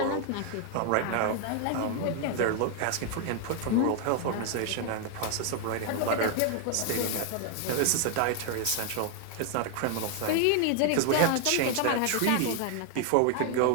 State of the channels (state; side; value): different; both; correlation 0.00